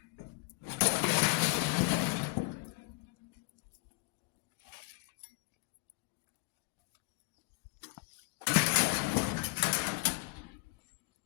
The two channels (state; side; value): quieter; right; 27.7 dB